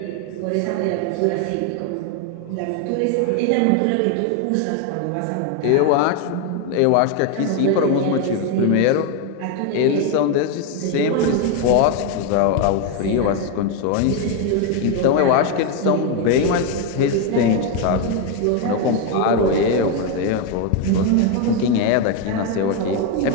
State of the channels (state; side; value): different; both; correlation 0.01